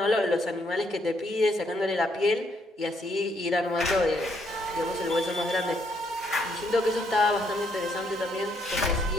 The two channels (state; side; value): normal; both; correlation 0.72